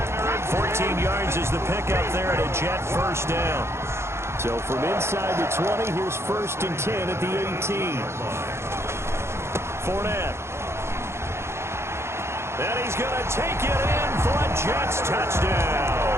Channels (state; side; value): late; left; 0.13 ms